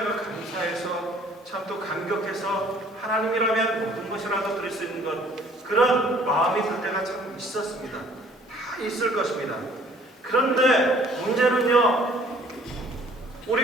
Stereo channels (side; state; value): both; normal; correlation 0.56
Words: 감사해서 참 또 감격해서 하나님이라면 모든 것이라도 드릴 수 있는 것 그런 마음이 들 때가 참 있었습니다. 다 있을 것입니다. 그런데 문제는요,